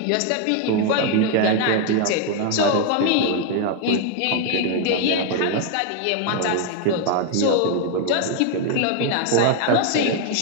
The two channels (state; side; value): different; both; correlation 0.00